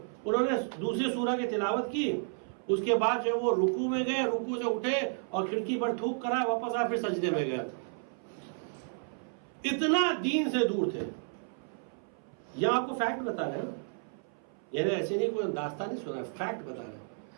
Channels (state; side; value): silent; left; 56 dB below the other